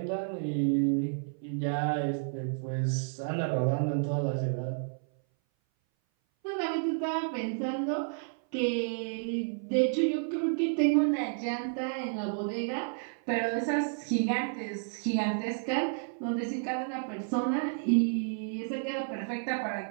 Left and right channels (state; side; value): silent; left; 57 dB below the other